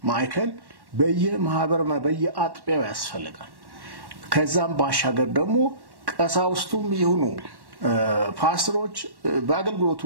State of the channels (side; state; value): left; late; 1.1 ms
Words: ማዕከል በየማህበር በየአጥቢያው ያስፈልጋል። ከዛም ባሻገር ደግሞ ቀሳውስቱም ይሁኑ ፓስተሮች በአገልግሎቱ